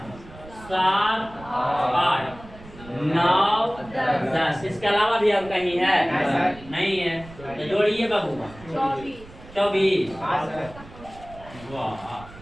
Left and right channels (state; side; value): noise; right; rumble, 19 dB below the sound